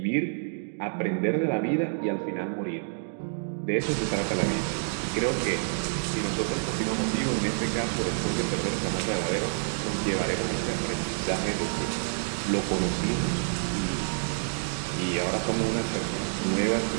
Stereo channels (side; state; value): left; silent; digital silence